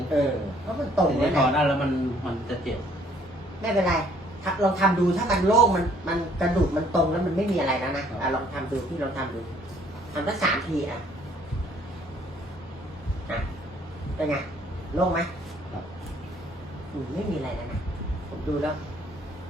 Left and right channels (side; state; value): both; normal; correlation 0.61